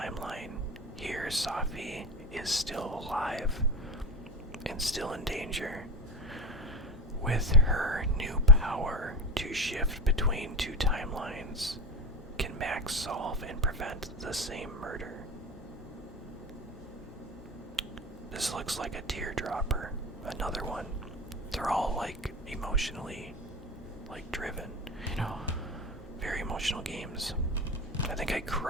Here, Safi is still alive and still in danger. With her new power to shift between 2 timelines, can Max solve and prevent the same murder? This looks like a teardropper. Another one. They're all like emotionally driven, very emotional games. I think I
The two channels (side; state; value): both; normal; correlation 0.22